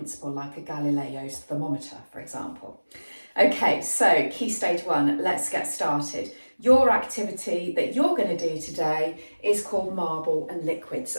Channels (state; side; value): inverted; both; correlation -1.00